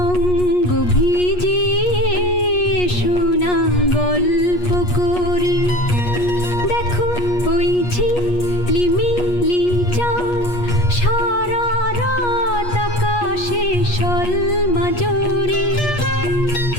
অঙ্গ ভিজিয়ে এসো না গল্প করি। দেখো ওই ঝিলিমিলি চাঁদ সারা রাত আকাশে সলমাজরি।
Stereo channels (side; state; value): right; late; 8.3 ms